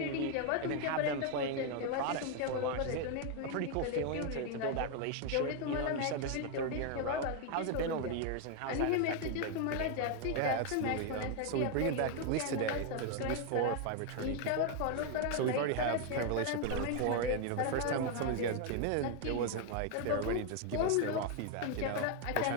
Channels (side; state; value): both; different; correlation 0.01